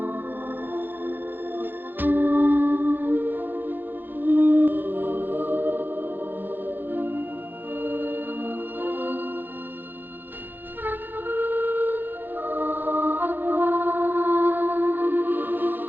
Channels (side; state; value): left; late; 0.092 ms